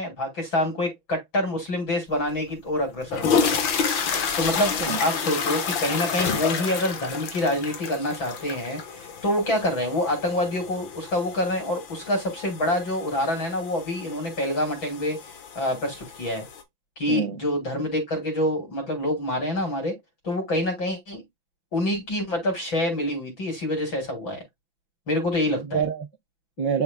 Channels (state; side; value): late; right; 5.9 ms